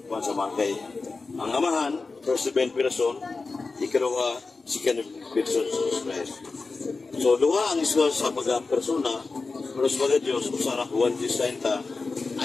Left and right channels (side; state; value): right; quieter; 4.0 dB